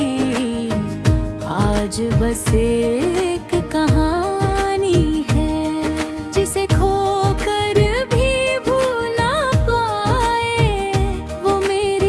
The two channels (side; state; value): both; identical; correlation 1.00